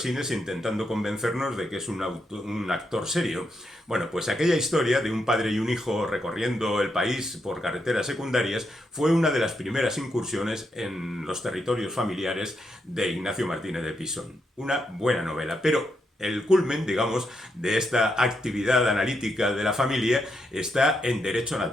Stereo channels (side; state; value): both; normal; correlation 0.81